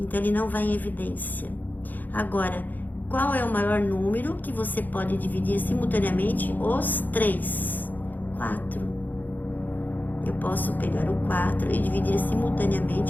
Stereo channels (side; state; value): right; late; 0.085 ms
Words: ele não vai em evidência. Agora, qual é o maior número que você pode dividir simultaneamente os 3? 4. Eu posso pegar o 4 e dividir